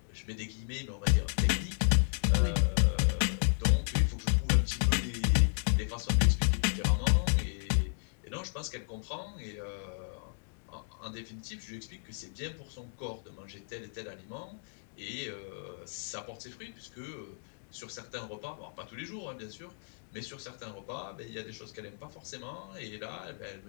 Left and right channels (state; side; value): silent; right; digital silence